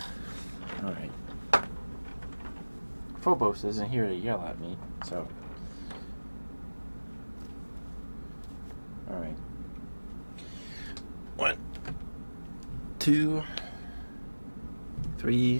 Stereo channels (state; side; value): inverted; both; correlation -1.00